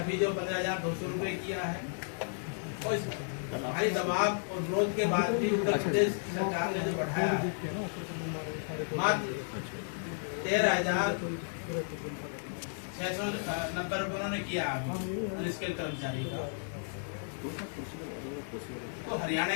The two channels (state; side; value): silent; right; digital silence